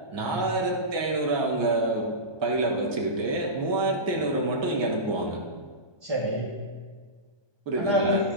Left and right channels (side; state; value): left; late; 1.2 ms